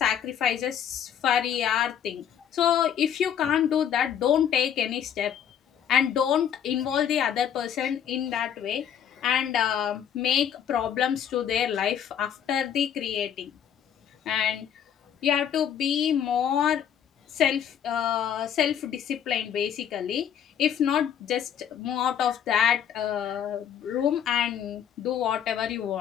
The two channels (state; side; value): quieter; right; 9.0 dB